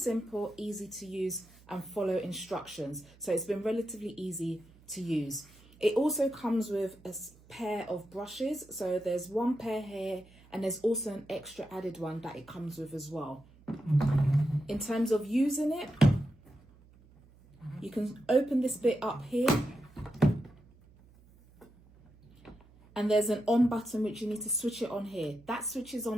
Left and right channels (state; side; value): noise; right; hum, 26 dB below the sound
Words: easy to use and follow instructions. So it's been relatively easy to use. It also comes with a pair of brushes. So there's one pair here and there's also an extra added one that it comes with as well. In terms of using it, you can open this bit up here and there's an on button which you need to switch it on here. That switches